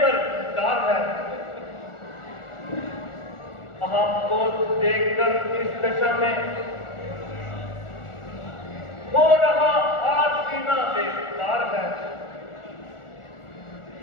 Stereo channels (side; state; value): right; late; 1.4 ms